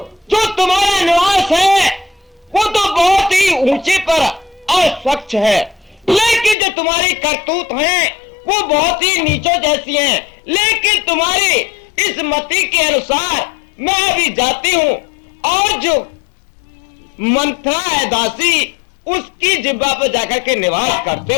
जो तुम्हारा निवास है वो तो बहुत ही ऊंचे पर और स्वच्छ है, लेकिन जो तुम्हारी करतूत है वो बहुत ही नीचों जैसी हैं। लेकिन तुम्हारी इस मति के अनुसार मैं अभी जाती हूँ और जो मंथरा है दासी, उसकी जिब्बा पर जाकर के निवास करते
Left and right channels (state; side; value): drops out; right; at 6.6 s